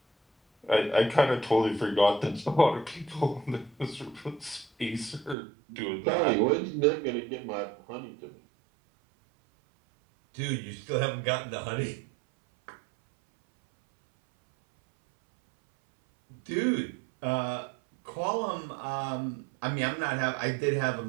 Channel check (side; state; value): left; drops out; at 5.4 s